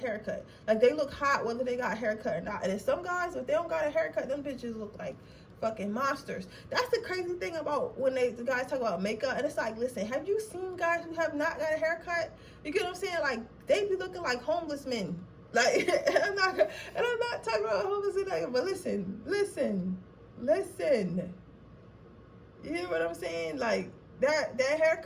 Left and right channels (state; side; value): identical; both; correlation 1.00